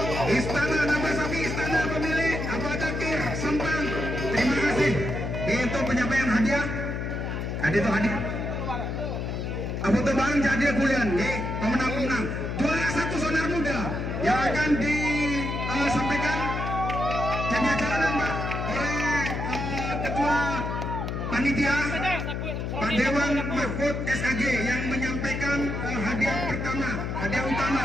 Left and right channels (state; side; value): noise; left; hum, 3 dB below the sound